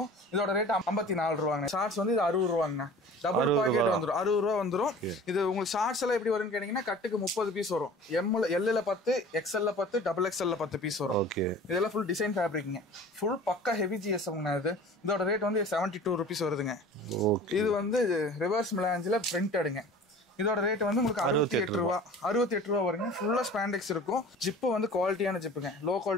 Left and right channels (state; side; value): normal; both; correlation 0.43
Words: இதோட ரேட் 54 ரூபாங்க. ஷார்ட்ஸ் வந்து இது 60 ரூபாங்க. டபுள் பாக்கெட் வந்துடும், 60 ரூபா வந்துடும். இது உங்களுக்கு ஷார்ட்ஸ் எல்லாம் எப்படி வரும்னு கேட்டீங்கன்னா கட்டுக்கு 30 பீஸ் வரும். எல்ல 10, எக்ஸ்எல்ல 10, டபுள் எக்ஸ்எல்ல 10 பீஸ் வரும். இதெல்லாம் ஃபுல் டிசைன் ஃபேப்ரிக்ங்க. ஃபுல் பக்கா ஹெவி ஜிஎஸ்எம்ங்க. இது இதோட ரேட் வந்து 72 ருபீஸ் வருதுங்க. இது வந்து ரிவர்ஸ் மிலாஞ்சில் பிரிண்டடுங்க. இதோட ரேட் வந்து உங்களுக்கு 68 ரூபா. 68 ரூபா வருங்க. ஃபுல்லா ஸ்பாண்டெக்ஸ் இருக்கும். ஜிப்பு வந்து குவாலிட்டியான ஜிப்புங்க, லோ